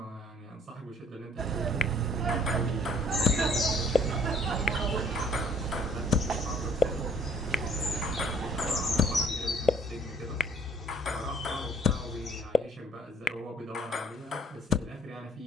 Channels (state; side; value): normal; both; correlation 0.59